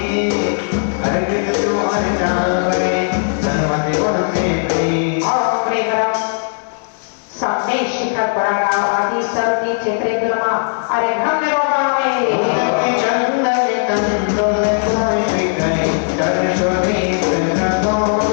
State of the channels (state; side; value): silent; right; 65 dB below the other